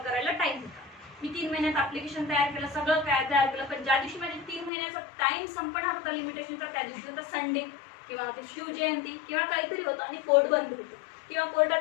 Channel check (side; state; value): right; drops out; at 4.7 s